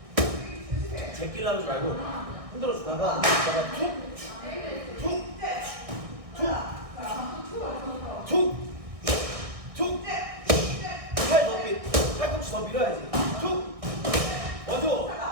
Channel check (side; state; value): left; late; 1.6 ms